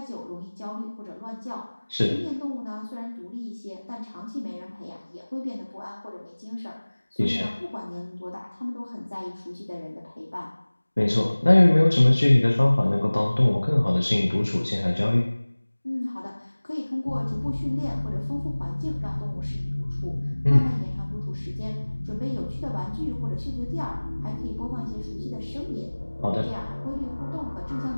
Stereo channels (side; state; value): both; inverted; correlation -1.00